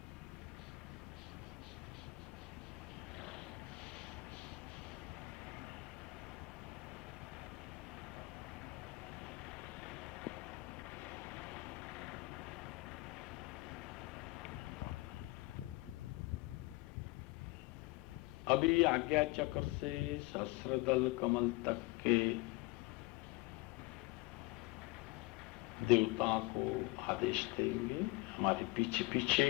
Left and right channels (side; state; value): right; quieter; 22.7 dB